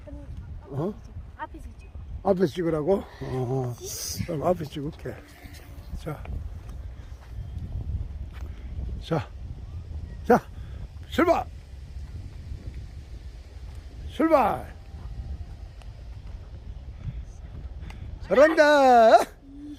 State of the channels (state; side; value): identical; both; correlation 1.00